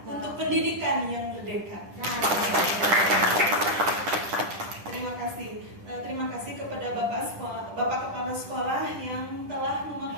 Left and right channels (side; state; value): left; late; 10 ms